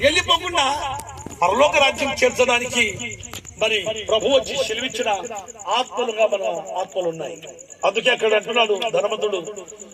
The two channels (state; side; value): identical; both; correlation 1.00